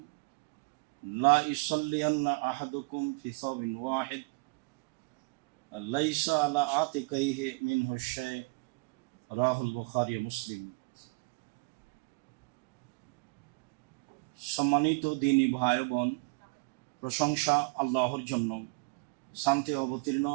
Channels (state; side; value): quieter; left; 31.1 dB